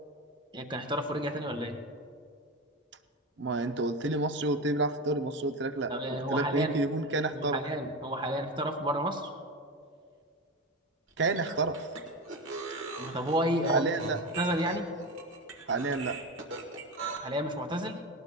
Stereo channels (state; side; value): normal; both; correlation 0.21